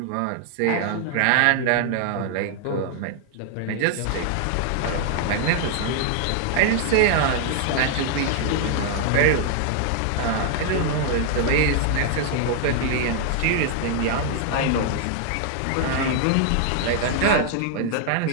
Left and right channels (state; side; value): different; both; correlation 0.00